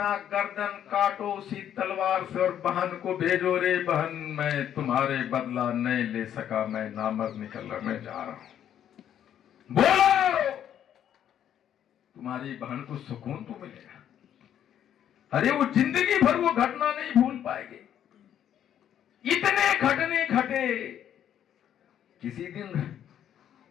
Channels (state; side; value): quieter; right; 10.1 dB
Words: गर्दन काटो उसी तलवार से और बहन को भेजो, रे बहन मैं तुम्हारे बदला नहीं ले सका, मैं नामर्द निकलने जा रहा हूं। बोलो, तुम्हारी बहन को सुकून तो मिलेगा। अरे वो जिंदगी भर वो घटना नहीं भूल पाएगी। इतने घटने घटे, किसी दिन